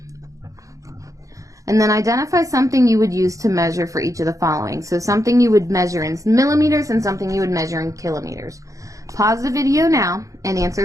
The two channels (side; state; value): left; late; 0.16 ms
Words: And then identify something you would use to measure for each of the following. So something you would measure in millimeters and something you would measure in kilometers. Pause the video now and